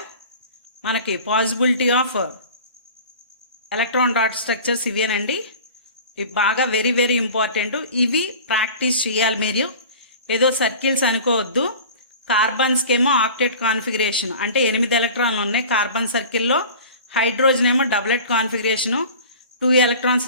మనకి possibility of electron dot structures ఇవేనండి. ఇవి బాగా వెరీ వెరీ ఇంపార్టెంట్. ఇవి ప్రాక్టీస్ చేయాలి మీరు. ఏదో సర్కిల్స్ అనుకోవద్దు. కార్బన్స్కి ఏమో ఆక్టెట్ కాన్ఫిగరేషన్ అంటే 8 ఎలక్ట్రాన్లు ఉన్నాయి కార్బన్ సర్కిల్లో. హైడ్రోజన్ ఏమో డబులెట్ కాన్ఫిగరేషను, 2 ఎలక్ట్రాన్స్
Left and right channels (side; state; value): both; inverted; correlation -0.40